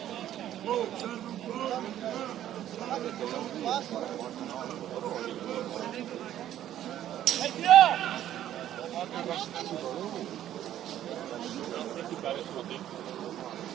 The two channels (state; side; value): quieter; left; 11.9 dB